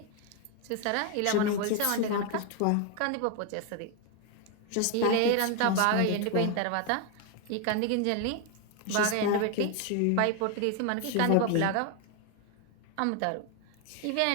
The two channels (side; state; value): both; different; correlation 0.01